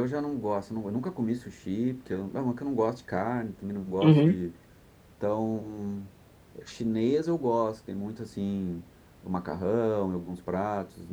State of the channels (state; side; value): identical; both; correlation 1.00